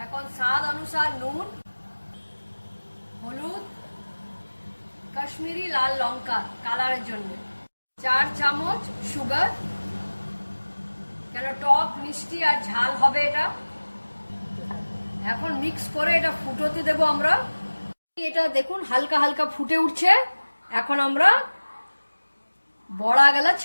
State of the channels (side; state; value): both; inverted; correlation -1.00